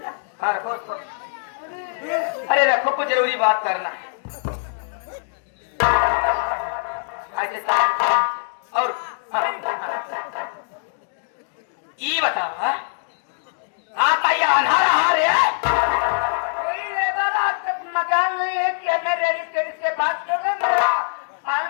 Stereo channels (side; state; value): right; silent; digital silence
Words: हाँ रखो उसको। अरे रखो, कुछ जरूरी बात करना है। और हाँ, हाँ। ये बताओ हाँ? आपका ये अनार हार है? कोई लेबर आज तक मकान नहीं है कि हमें रेडिस के बात कर रहे। मेरा